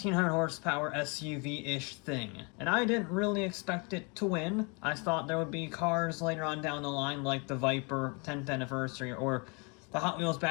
horsepower SUV-ish thing, and I didn't really expect it to win. I thought there would be cars later on down the line like the Viper 10th anniversary or the Hot Wheels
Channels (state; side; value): quieter; right; 32.4 dB